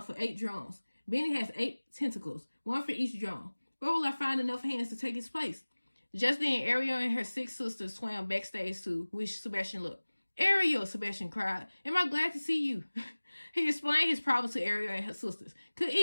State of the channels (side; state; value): both; inverted; correlation -1.00